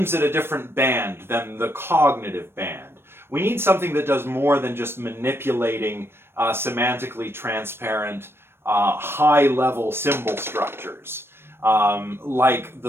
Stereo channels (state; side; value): late; left; 0.12 ms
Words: at a different band than the cognitive band. We need something that does more than just manipulating semantically transparent, high-level symbol structures, like